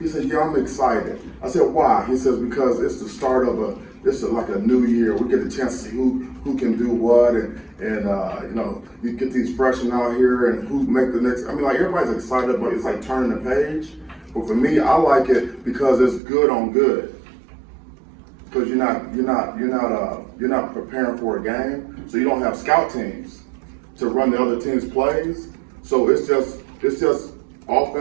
said, yeah, I'm excited. I said, why? He says, because it's the start of like a new year. We get a chance to see who can do what, and you get these freshmen out here and who make the next. I mean, like, everybody's excited, but it's like turning the page. But for me, I like it because it's good on good. Because you're not preparing for a game, so you don't have scout teams to run the other team's plays. So it's just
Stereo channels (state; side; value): drops out; left; at 16.2 s